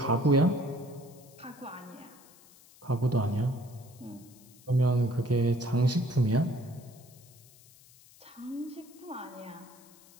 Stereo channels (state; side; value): noise; left; hiss, 24 dB below the sound